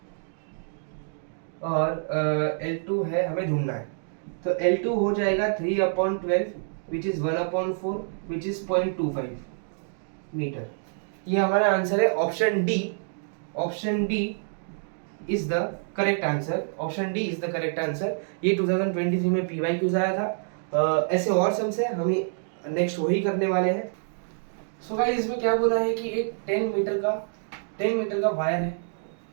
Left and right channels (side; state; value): left; silent; digital silence